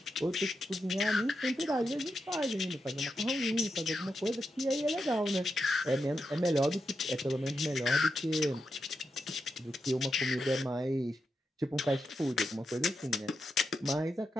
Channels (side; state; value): both; normal; correlation 0.86